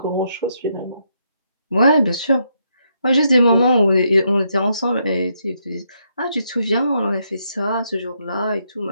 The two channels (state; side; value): inverted; both; correlation -0.77